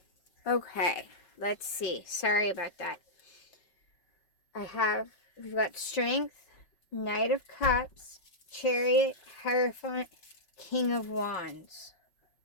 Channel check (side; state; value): right; late; 5.3 ms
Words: Okay, let's see. Sorry about that. We've got Strength, Knight of Cups, Chariot, Hierophant, King of Wands.